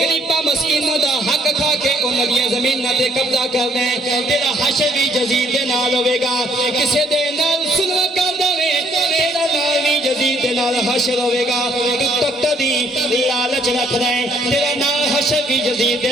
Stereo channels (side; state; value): both; normal; correlation 0.66